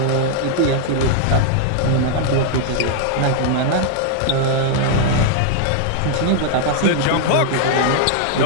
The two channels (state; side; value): different; both; correlation 0.00